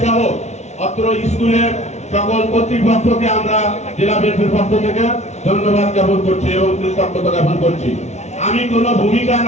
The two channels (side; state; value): right; late; 0.32 ms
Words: সহ অত্র স্কুলের সকল কর্তৃপক্ষকে আমরা জেলা বিএনপির পক্ষ থেকে ধন্যবাদ জ্ঞাপন করছি এবং কৃতজ্ঞতা জ্ঞাপন করছি। আমি কোনো ভূমিকা